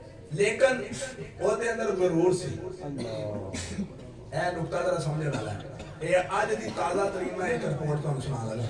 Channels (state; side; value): identical; both; correlation 1.00